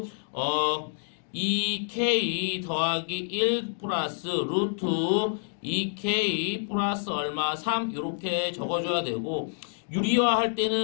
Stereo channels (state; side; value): silent; right; digital silence